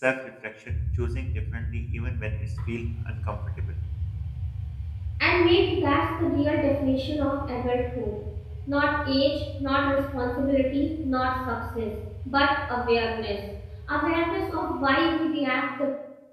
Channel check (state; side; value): identical; both; correlation 1.00